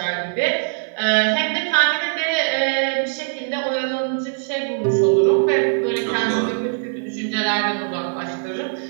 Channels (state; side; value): silent; left; 56 dB below the other